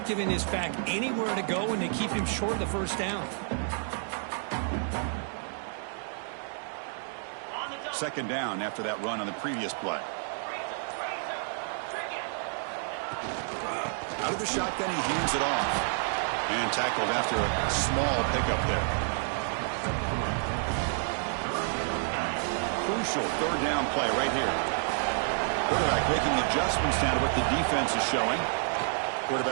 giving this back anywhere to go, and they keep him short of the first down. Second down after that run on the previous play. Out of the shotgun, he hands it off. And tackled after a small pickup there. Crucial third down play right here. Quarterback making adjustments now to what the defense is showing.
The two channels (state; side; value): silent; left; 58 dB below the other